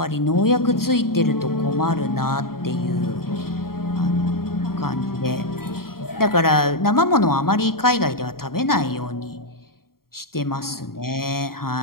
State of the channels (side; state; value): right; late; 0.93 ms